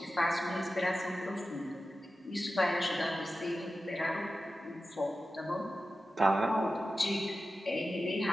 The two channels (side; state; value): both; normal; correlation 0.93